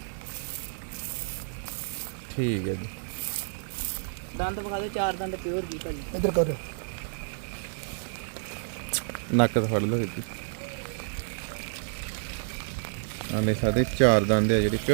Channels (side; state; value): left; silent; 58 dB below the other